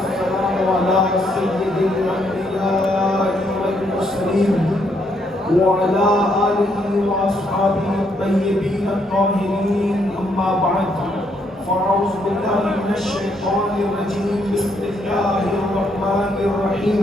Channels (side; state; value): both; normal; correlation 0.73